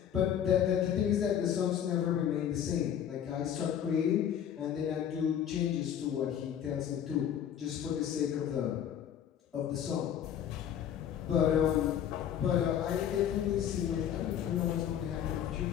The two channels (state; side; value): quieter; right; 9.5 dB